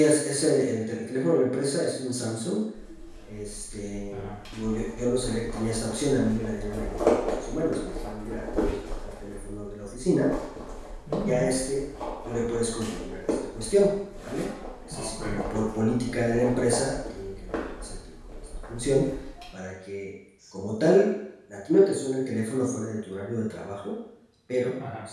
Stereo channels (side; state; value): both; identical; correlation 1.00